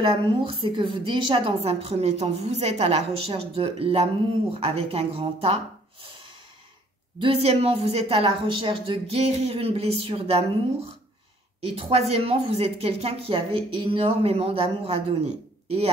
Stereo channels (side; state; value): both; normal; correlation 0.60